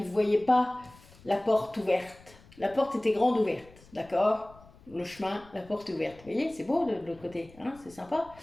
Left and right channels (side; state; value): left; noise; rumble, 24 dB below the sound